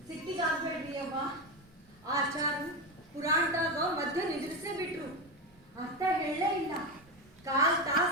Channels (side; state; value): both; normal; correlation 0.16